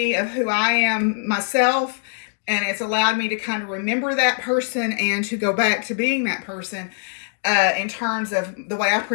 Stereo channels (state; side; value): silent; right; digital silence